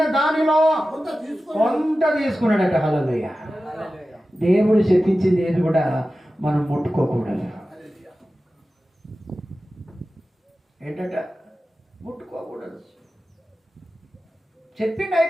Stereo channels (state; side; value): normal; both; correlation 0.94